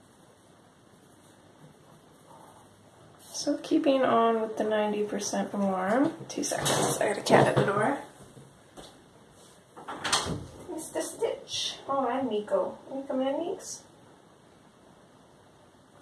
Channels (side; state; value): both; identical; correlation 1.00